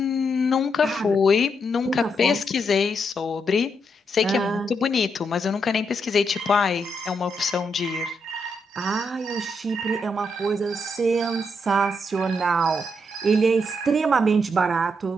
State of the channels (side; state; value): both; normal; correlation 0.79